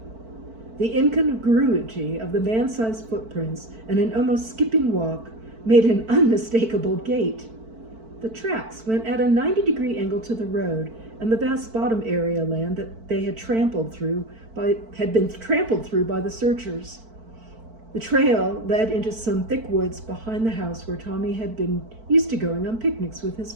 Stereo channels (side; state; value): left; late; 4.5 ms